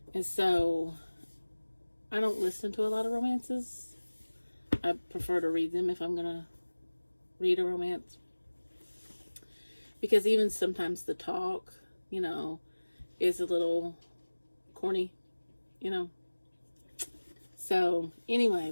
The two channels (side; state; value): both; inverted; correlation -1.00